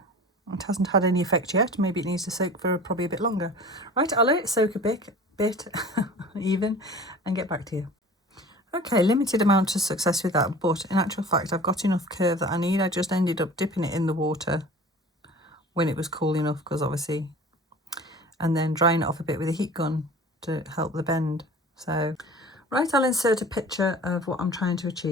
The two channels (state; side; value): normal; both; correlation 0.41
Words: It hasn't had any effect yet. Maybe it needs to soak for probably a bit longer. Right, I'll let it soak a bit even, and get back to you. Okay, limited amount of success with that, but in actual fact I've got enough curve that I need. I just ended up dipping it in the water when it was cool enough, because obviously, and then drying it off a bit with a heat gun to help the bend. So, right, I'll insert a picture of what I'm trying to